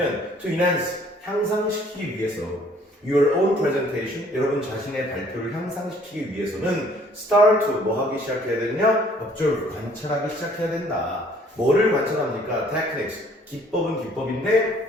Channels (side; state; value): both; normal; correlation 0.59